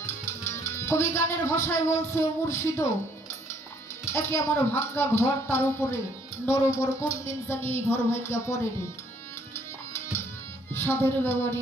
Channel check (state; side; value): normal; both; correlation 0.65